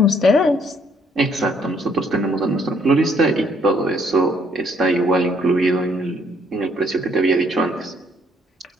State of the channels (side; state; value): both; normal; correlation 0.67